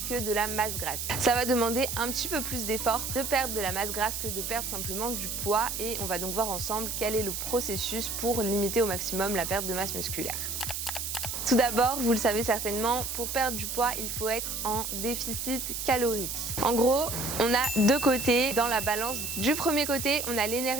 que de la masse grasse. Ça va demander un petit peu plus d'effort de perdre de la masse grasse que de perdre simplement du poids et on va donc voir ensemble quel est le processus pour limiter au maximum la perte de masse musculaire. Tout d'abord, vous le savez certainement, pour perdre du poids, il faut être en déficit calorique. En gros, on a deux côtés dans la balance. Du premier côté, on a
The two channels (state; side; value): noise; right; hiss, 4 dB below the sound